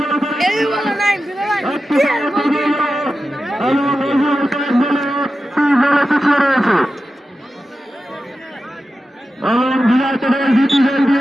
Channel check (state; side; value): normal; both; correlation 0.92